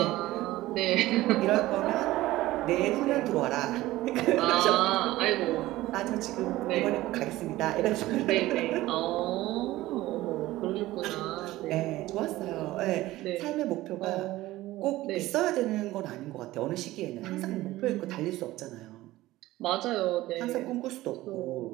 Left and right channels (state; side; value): quieter; left; 17.0 dB